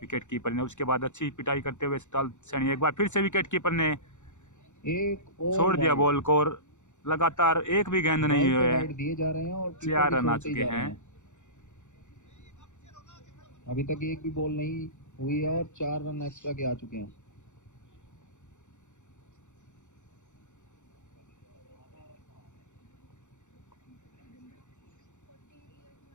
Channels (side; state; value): right; late; 0.84 ms